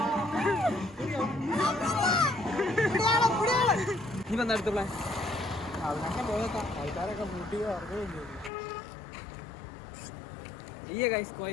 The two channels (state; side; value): drops out; right; at 8.5 s